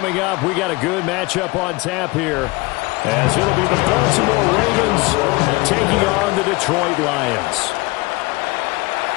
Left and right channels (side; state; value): right; quieter; 23.5 dB